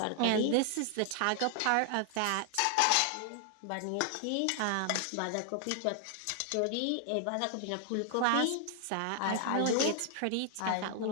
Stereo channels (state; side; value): different; both; correlation 0.00